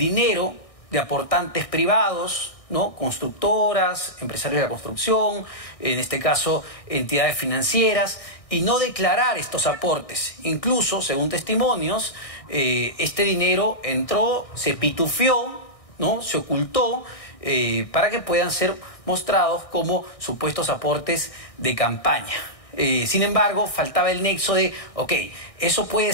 de aportantes privados, ¿no? Constructoras, empresarios de la construcción, en este caso entidades financieras, y no declarar estos aportes. Incluso, según testimonios, este dinero entró, se pitufió, ¿no? Se ocultó para que puedan ser mostrados como supuestos aportes de campaña. Sin embargo, faltaba el nexo de, ok, eso puede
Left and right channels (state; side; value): late; right; 1.6 ms